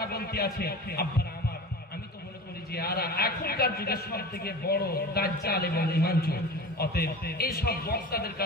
বলতে আছে। আব্বারা আমার, আমি তো মনে করি যে এরা এখনকার যুগে সব থেকে বড় দাজ্জাল এবং ঈমান চোর। অতএব এই সব বক্তাদের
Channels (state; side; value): normal; both; correlation 0.34